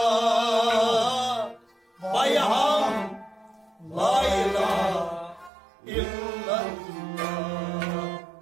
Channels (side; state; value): left; drops out; at 5.5 s